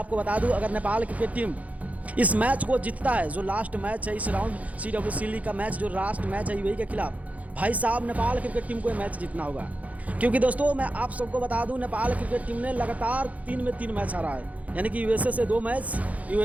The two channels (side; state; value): left; late; 0.070 ms